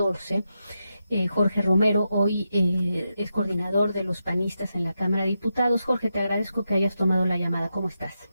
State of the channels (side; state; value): both; inverted; correlation -0.86